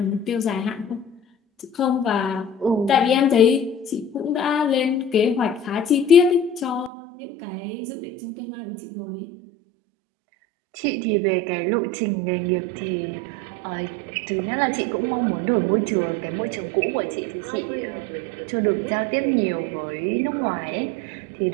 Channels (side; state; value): left; drops out; at 6.9 s